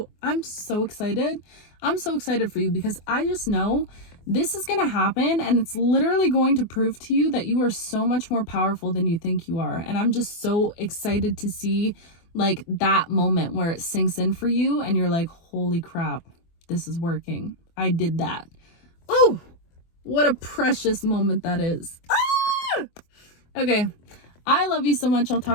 excited. I'm so excited for you, because I just know this is gonna happen, and it's literally going to prove to you that you are so much more powerful than you think you are. And I'm just so excited to see like that moment where it sinks in for you and you're like, holy crap, this is working. I did that. Oh, what a precious moment that is. Ah! Okay, I love you so much. I'll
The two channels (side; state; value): right; late; 24 ms